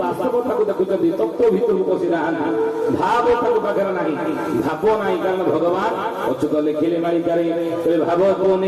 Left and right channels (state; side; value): identical; both; correlation 1.00